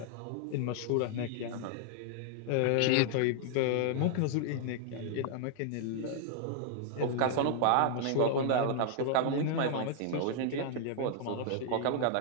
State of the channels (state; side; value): different; both; correlation -0.01